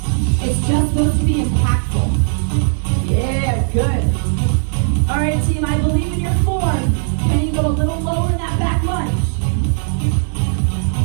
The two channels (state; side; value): silent; left; digital silence